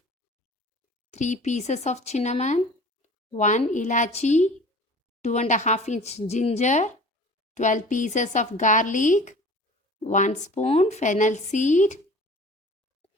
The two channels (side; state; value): both; normal; correlation 0.44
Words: 3 pieces of cinnamon, 1 ilachi, 2.5-inch ginger, 12 pieces of garlic, 1 spoon fennel seed,